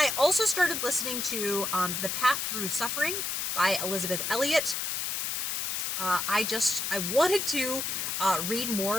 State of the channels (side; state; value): left; noise; hiss, 1 dB below the sound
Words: also started listening to The Path Through Suffering by Elizabeth Elliot. I wanted to read